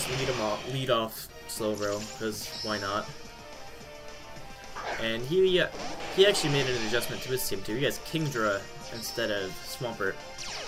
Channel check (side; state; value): both; identical; correlation 1.00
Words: lead off Slowbro, because why not? And he actually made an adjustment to his team too. He has Kingdra instead of Swampert,